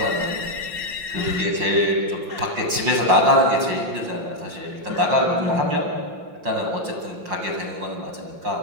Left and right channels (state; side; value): late; left; 5.6 ms